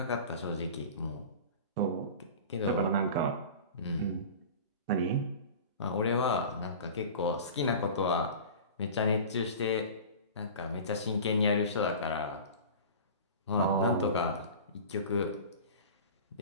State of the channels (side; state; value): both; inverted; correlation -0.36